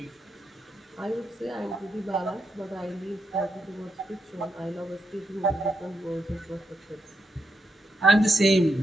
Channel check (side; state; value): both; normal; correlation 0.83